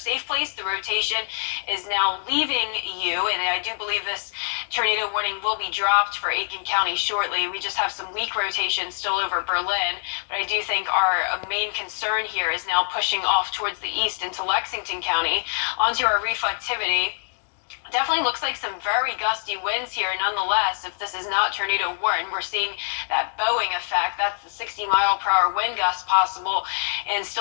place. The rotation is now leaving you, and I do believe this tornado warning will be dropped for Aiken County shortly. We just have some weak rotation still over Berlin, but I do think our main concern here is now pushing off towards the east into Lexington County. Onto our reflectivity. Definitely looks like some very gusty winds here. Nonetheless, if this is not tornado warning, we're seeing that bowing effect. That's the 60-mile-per-hour wind gust possible, and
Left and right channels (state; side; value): silent; right; digital silence